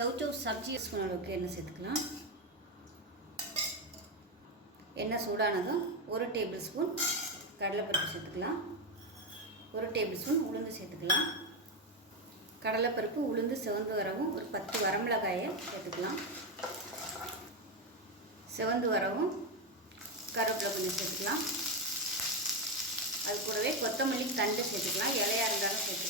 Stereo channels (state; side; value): normal; both; correlation 0.09